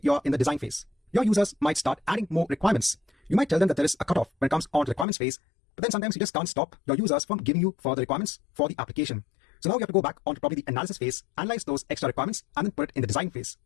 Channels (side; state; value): right; drops out; at 5.1 s